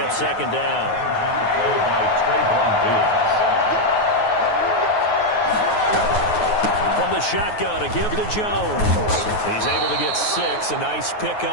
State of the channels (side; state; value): right; late; 9.4 ms